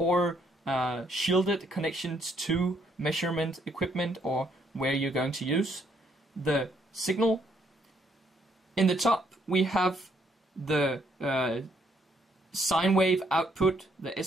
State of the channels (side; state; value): both; normal; correlation 0.70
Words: shielded connections to measurement equipment or where you're going to use the signal. In the top we have the sine wave output, the